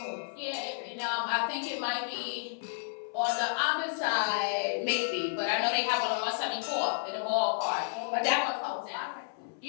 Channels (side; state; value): right; silent; 57 dB below the other